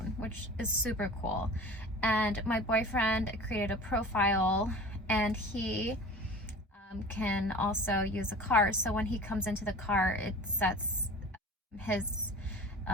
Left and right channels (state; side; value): normal; both; correlation 0.39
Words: which is super cool. And my boyfriend created a profile, and he can also use a car. So when he comes into the car, it sets his